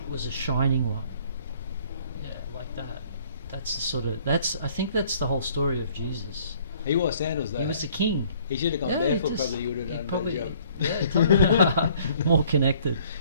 was a shining one. Yeah, like that. That's the sort of I think that's the whole story of Jesus. He wore sandals though. He was the king. He should have gone barefoot. Probably, you would have done a better job. Yeah, more connected.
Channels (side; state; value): both; inverted; correlation -0.59